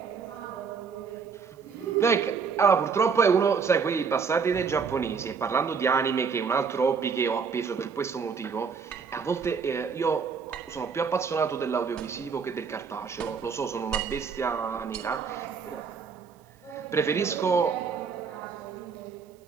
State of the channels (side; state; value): left; quieter; 5.8 dB